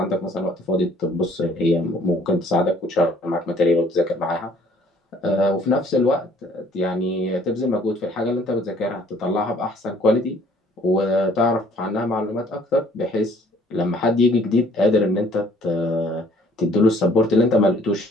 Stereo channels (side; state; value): both; normal; correlation 0.59